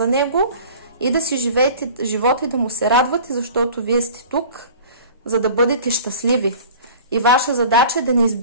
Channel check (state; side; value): inverted; both; correlation -0.43